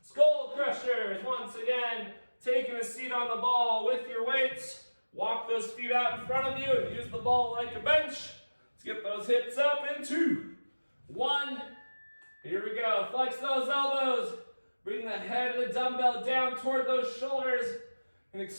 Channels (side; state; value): both; inverted; correlation -1.00